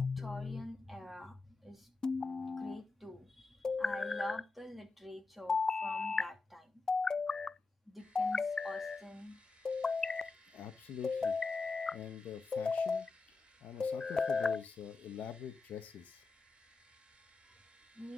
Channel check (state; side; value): quieter; right; 4.1 dB